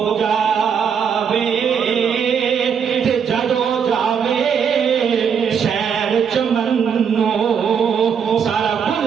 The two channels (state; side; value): quieter; left; 7.1 dB